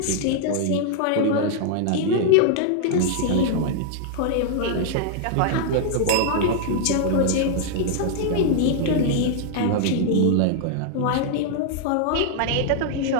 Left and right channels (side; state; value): both; different; correlation -0.01